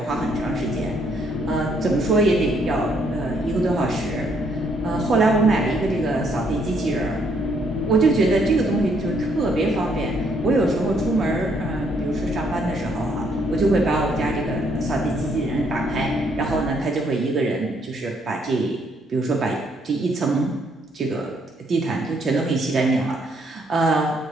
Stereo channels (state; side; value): normal; both; correlation 0.70